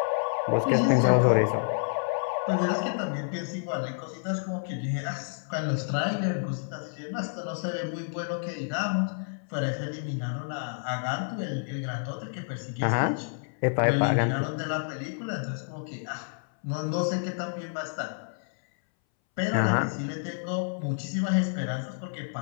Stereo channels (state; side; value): silent; right; 59 dB below the other